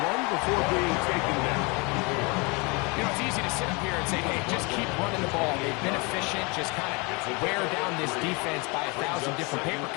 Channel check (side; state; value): right; quieter; 28.9 dB